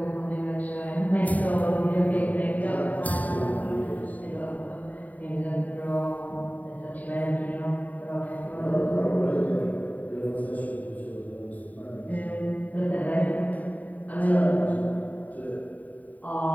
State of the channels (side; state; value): right; late; 0.074 ms